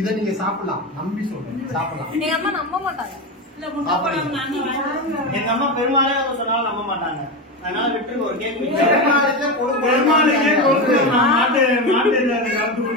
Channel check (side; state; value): both; normal; correlation 0.17